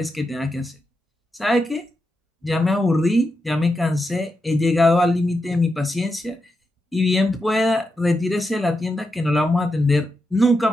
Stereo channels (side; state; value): both; normal; correlation 0.86